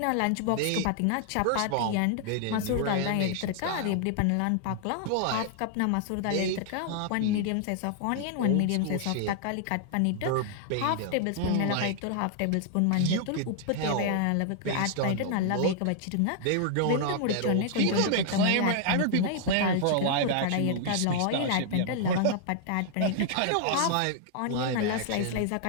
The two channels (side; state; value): both; different; correlation -0.01